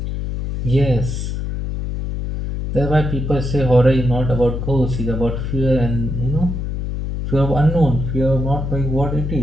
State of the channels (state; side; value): noise; left; hum, 3 dB below the sound